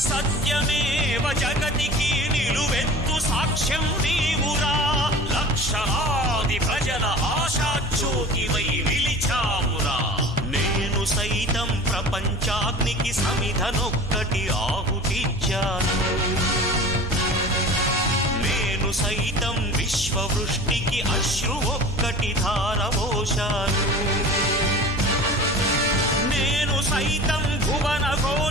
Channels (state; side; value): normal; both; correlation 0.39